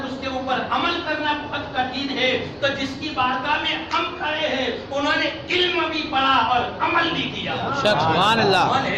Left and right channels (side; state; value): both; identical; correlation 1.00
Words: اس کے اوپر عمل کرنا بہت کٹھن ہے۔ تو جس کی بارگاہ میں ہم کھڑے ہیں انہوں نے علم بھی پڑھا اور عمل بھی کیا، سبحان اللہ، انہوں